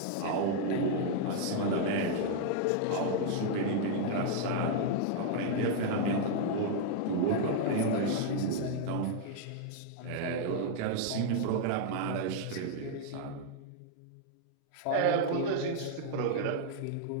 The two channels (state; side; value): different; both; correlation 0.00